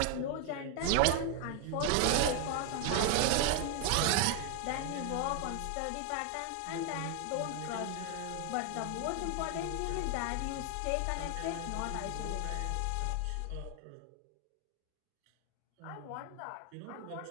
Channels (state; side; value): different; both; correlation 0.00